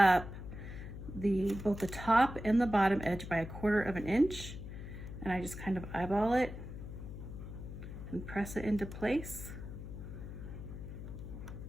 both the top and the bottom edge by 1/4 of an inch. And I just kind of eyeball it and press it into place.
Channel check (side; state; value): left; noise; hum, 10 dB below the sound